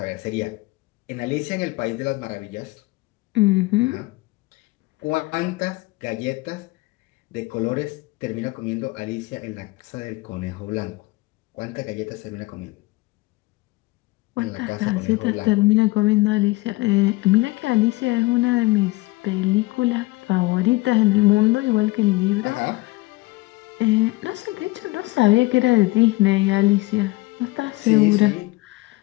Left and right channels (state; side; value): quieter; right; 21.3 dB